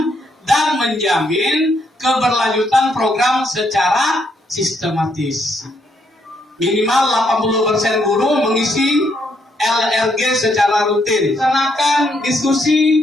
dan menjamin keberlanjutan program secara sistematis. Minimal 80% guru mengisi LRG secara rutin. Laksanakan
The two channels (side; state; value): both; normal; correlation 0.74